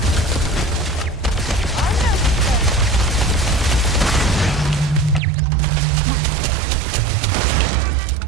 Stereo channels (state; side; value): drops out; left; at 5.2 s